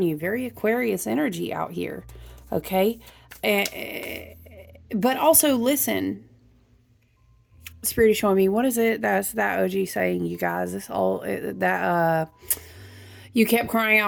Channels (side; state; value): both; identical; correlation 1.00